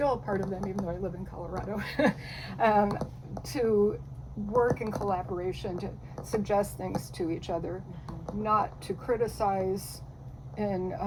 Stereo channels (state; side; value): identical; both; correlation 1.00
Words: a part of them, even though I live in Colorado. To work in collaboration, to suggest things to each other, not to criticize in